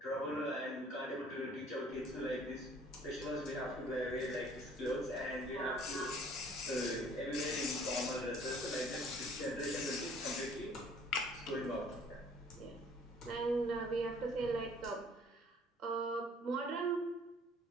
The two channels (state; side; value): normal; both; correlation 0.55